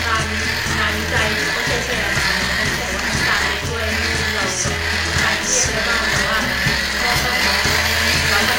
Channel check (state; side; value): identical; both; correlation 1.00